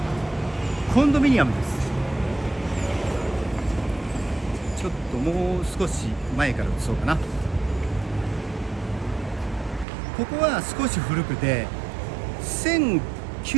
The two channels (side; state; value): left; drops out; at 9.9 s